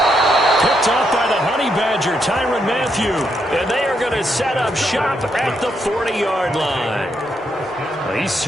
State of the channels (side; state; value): both; normal; correlation 0.79